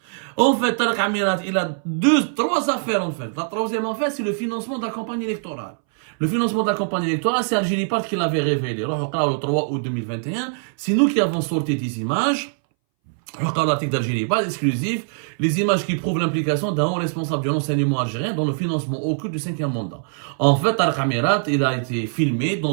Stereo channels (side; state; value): left; silent; 62 dB below the other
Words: En fait, Tariq Amirat, il a trois affaires en fait. La troisième affaire, c'est le financement de la campagne électorale. Le financement de la campagne électorale, c'est Algérie Part qui l'avait révélé. Le 3 août 2021, c'est nous qui avons sorti des images. L'article d'Algérie Part exclusif, les images qui prouvent l'implication d'un haut responsable du renseignement algérien dans le financement occulte du 5e mandat. En fait, Tariq Amirat, il a été filmé